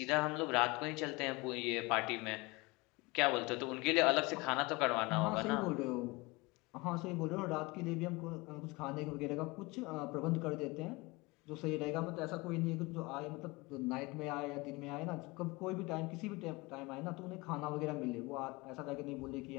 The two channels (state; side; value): quieter; right; 24.5 dB